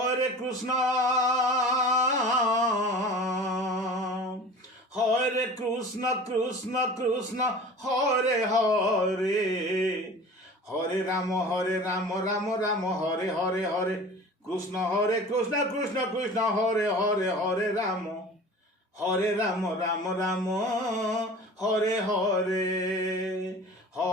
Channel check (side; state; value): both; normal; correlation 0.40